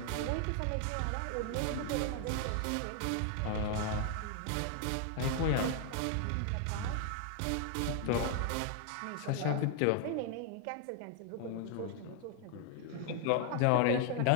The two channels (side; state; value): both; different; correlation 0.00